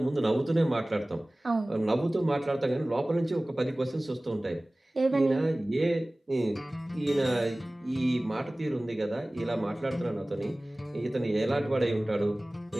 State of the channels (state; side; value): normal; both; correlation 0.98